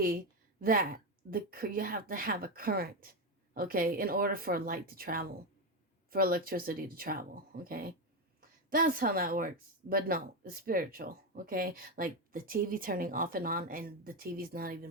that you have to have a current, okay, in order for light to travel, for electricity to travel, okay. That's how that works. But no, it's spiritual, okay? Like the TV turning off and on, and the TV's not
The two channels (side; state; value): both; normal; correlation 0.11